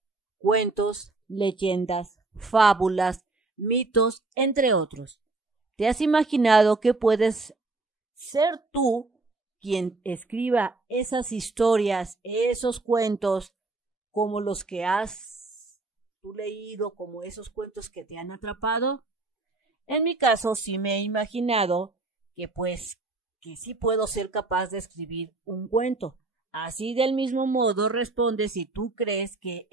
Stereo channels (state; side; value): quieter; left; 3.4 dB